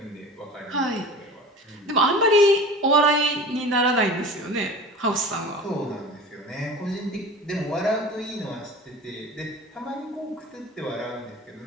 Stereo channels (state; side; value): normal; both; correlation 0.37